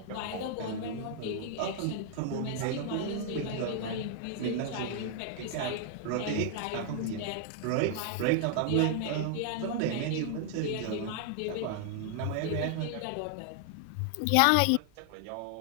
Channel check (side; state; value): both; different; correlation 0.00